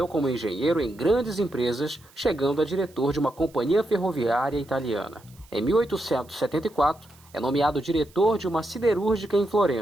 como engenheiro em grandes empresas, chegando a diretor de uma companhia ferroviária italiana. Em 1874, é nomeado diretor de uma siderúrgica em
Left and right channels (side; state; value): right; noise; hiss, 27 dB below the sound